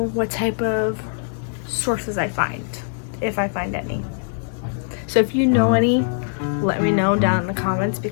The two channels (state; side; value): silent; right; 64 dB below the other